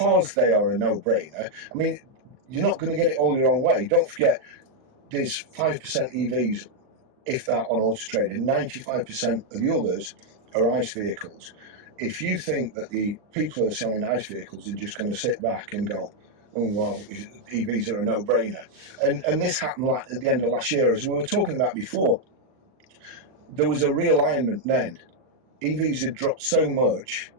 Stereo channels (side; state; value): left; late; 39 ms